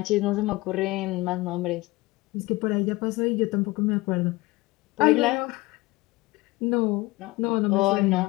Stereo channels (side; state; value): right; quieter; 21.4 dB